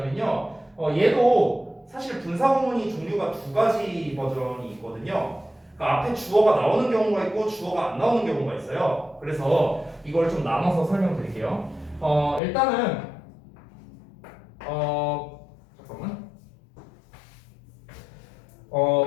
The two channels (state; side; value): drops out; right; at 12.4 s